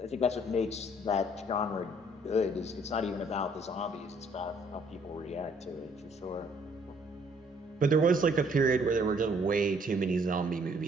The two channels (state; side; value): normal; both; correlation 0.63